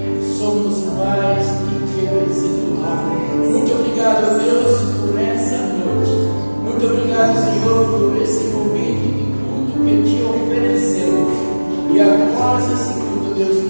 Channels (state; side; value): inverted; both; correlation -1.00